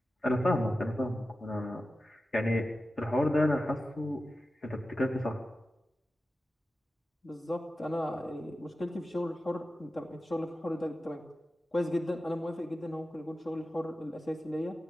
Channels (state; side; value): normal; both; correlation 0.93